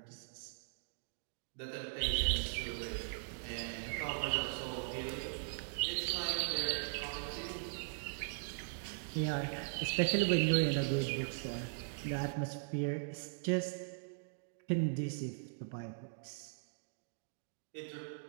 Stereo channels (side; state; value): left; silent; digital silence